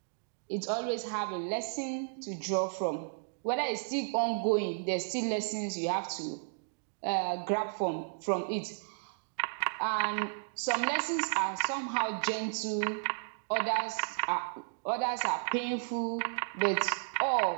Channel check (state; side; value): silent; left; digital silence